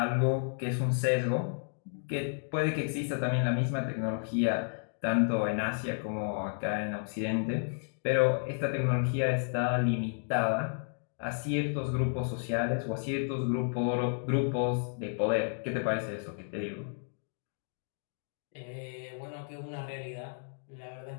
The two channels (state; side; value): silent; right; digital silence